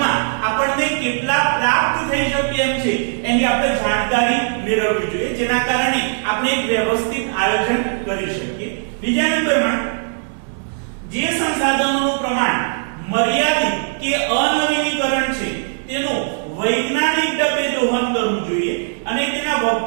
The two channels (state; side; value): silent; left; digital silence